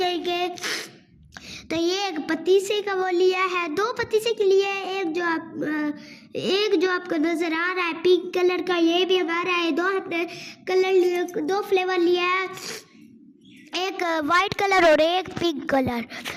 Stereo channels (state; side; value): identical; both; correlation 1.00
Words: तो ये एक पतीसे का वो लिया है, 2 पतीसे के लिए। एक जो आपको नज़र आ रहा है पिंक कलर का, ये भी हमारा है। 2 हमने कलर 2 फ्लेवर लिया है, एक वाइट कलर और एक पिंक कलर।